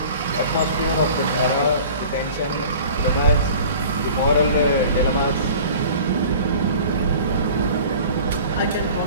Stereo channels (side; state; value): both; inverted; correlation -0.43